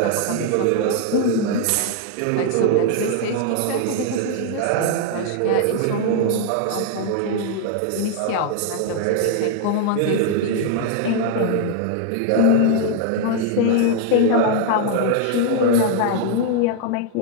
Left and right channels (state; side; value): different; both; correlation 0.00